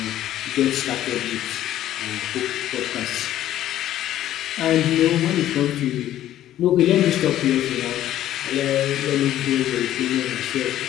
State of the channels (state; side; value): quieter; right; 12.7 dB